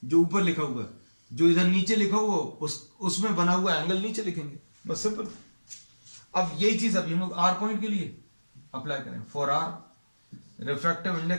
जो ऊपर लिखा हुआ है, जो इधर नीचे लिखा हुआ उसमें बना हुआ एंगल नीचे लिखेंगे, बस सिंपल. अब यही चीज अभी हम लोग R पॉइंट के लिए अप्लाई करें. For R, refractive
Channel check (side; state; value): both; inverted; correlation -1.00